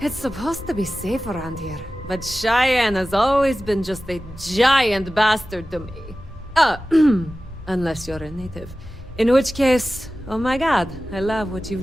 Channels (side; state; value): both; normal; correlation 0.95